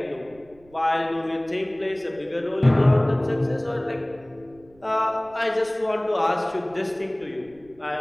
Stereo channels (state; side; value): noise; right; rumble, 28 dB below the sound